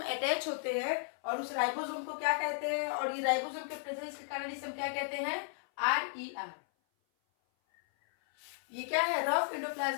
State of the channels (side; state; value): right; silent; 55 dB below the other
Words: अटैच होते हैं, और उस राइबोसोम को क्या कहते हैं? और ये राइबोसोम के प्रेजेंस के कारण इसे हम क्या कहते हैं? RER। ये क्या है? रफ